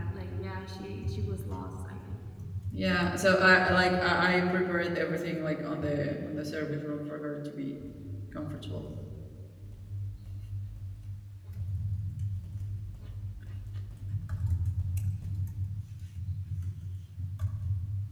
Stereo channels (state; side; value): identical; both; correlation 1.00